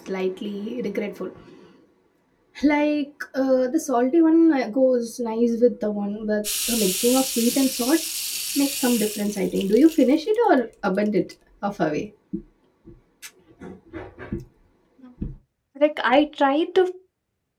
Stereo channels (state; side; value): identical; both; correlation 1.00